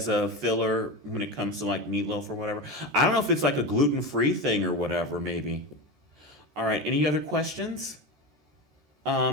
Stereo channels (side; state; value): left; late; 14 ms